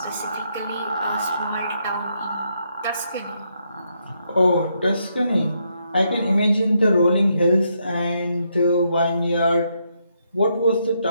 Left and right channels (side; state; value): both; inverted; correlation -0.77